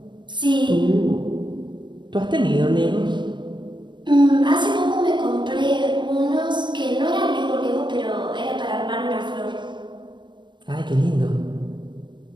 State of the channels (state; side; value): late; left; 0.22 ms